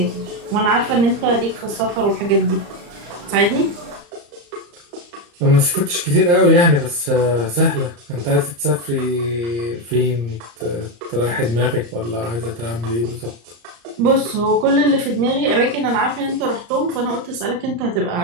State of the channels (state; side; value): late; left; 34 ms